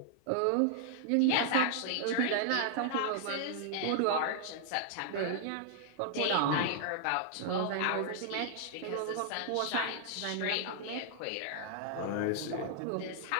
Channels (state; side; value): different; both; correlation -0.01